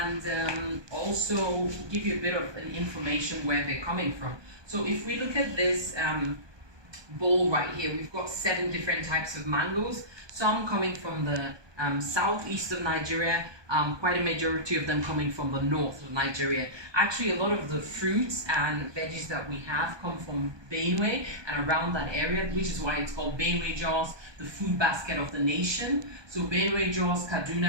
also give you a bit of an information where they're coming from. So if we look at this bowl right here, we've got 7 different types of mangoes, some coming from the southeast of Nigeria, quite a majority of them coming from the north of Nigeria. Actually, a lot of the fruits and veggies that we have come from Benue and around that area, which is why it's called Benue Jos, the food basket of the nation. So Benue Jos,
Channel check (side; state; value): left; late; 1.2 ms